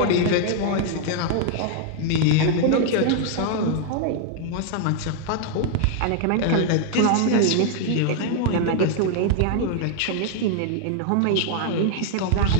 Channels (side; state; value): both; different; correlation 0.00